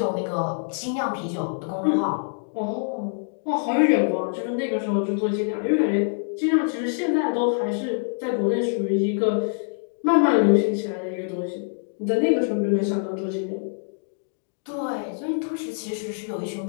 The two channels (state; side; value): silent; right; digital silence